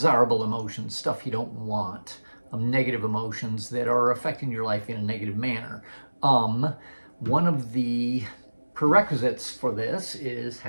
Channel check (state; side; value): inverted; both; correlation -1.00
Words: emotions, stuff you don't want, negative emotions that are affecting your life in a negative manner. One of the prerequisites for this is